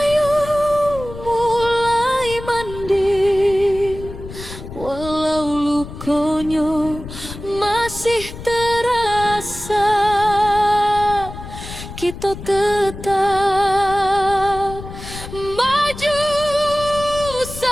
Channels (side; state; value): left; noise; rumble, 12 dB below the sound